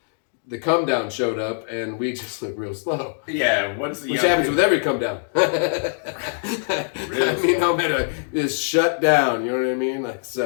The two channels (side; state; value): right; silent; digital silence